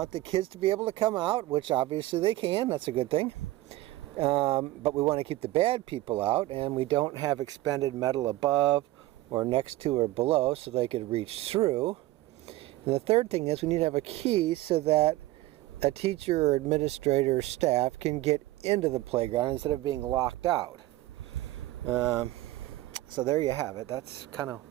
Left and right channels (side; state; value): left; quieter; 17.4 dB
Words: the kids to be able to come out, which obviously they can. That's a good thing. But we want to keep the bad people out, and we don't have expended metal above or next to or below so they could reach through. And the third thing is we need to have a key so that a teacher or administrator or staff can get into the playground instead of being locked out. So there you have it. That's kind of